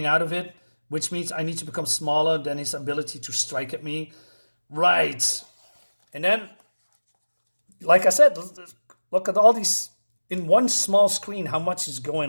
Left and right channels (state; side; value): inverted; both; correlation -1.00